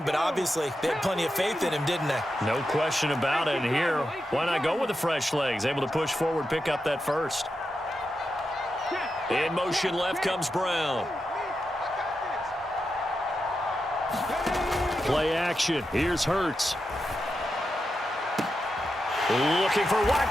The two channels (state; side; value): normal; both; correlation 0.88